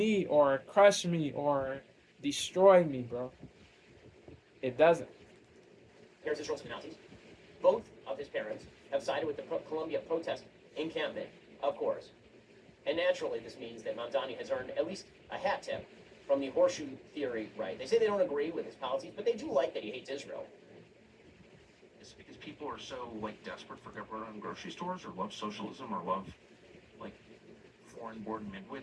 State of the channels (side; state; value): both; identical; correlation 1.00